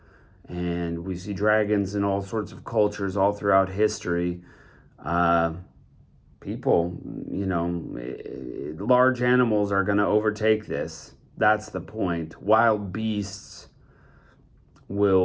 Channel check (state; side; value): identical; both; correlation 1.00